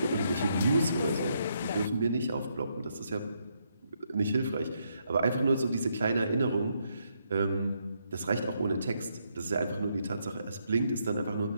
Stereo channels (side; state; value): both; inverted; correlation -0.77